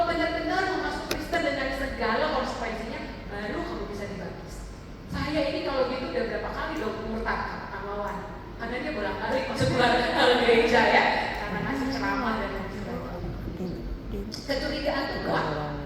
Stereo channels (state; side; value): identical; both; correlation 1.00